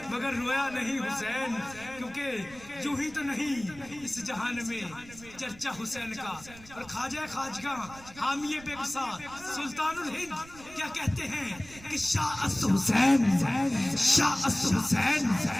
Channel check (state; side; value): noise; right; rumble, 20 dB below the sound